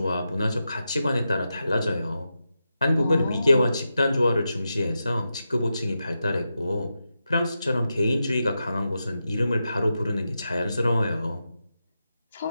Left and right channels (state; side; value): inverted; both; correlation -0.89